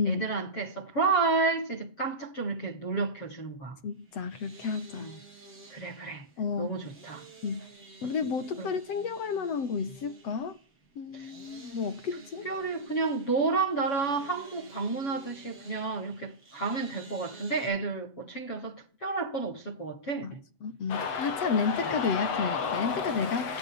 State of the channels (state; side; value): late; right; 8.1 ms